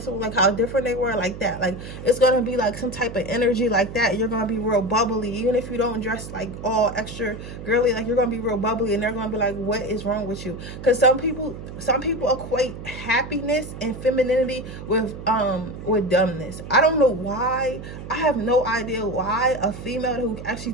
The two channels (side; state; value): right; noise; hum, 11 dB below the sound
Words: like how different they were, like that. Like it's gonna be like some type of energy like that. You're gonna be real bubbly, even if you don't dress like all extra girly. Like you're gonna be real bubbly, and they're gonna be like, what is wrong with you? Because some people equate happiness and femininity with dumbness. I don't know why. I have no idea why a female who actually